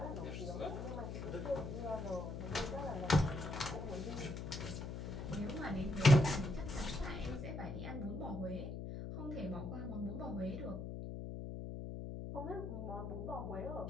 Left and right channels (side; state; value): left; noise; hum, 5 dB below the sound